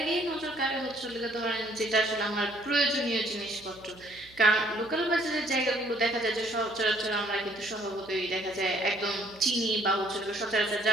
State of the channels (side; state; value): right; noise; hum, 24 dB below the sound